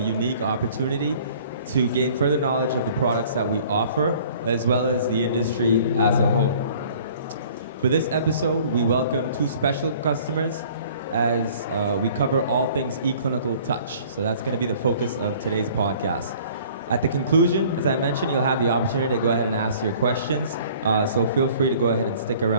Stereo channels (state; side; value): inverted; both; correlation -0.52